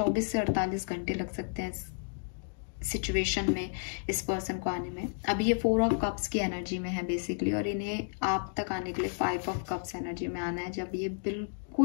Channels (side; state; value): right; silent; digital silence